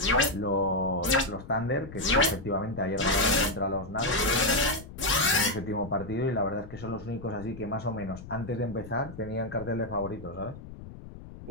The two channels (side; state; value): left; noise; rumble, 14 dB below the sound